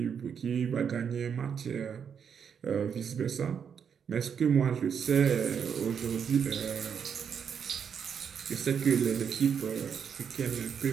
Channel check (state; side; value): quieter; left; 7.3 dB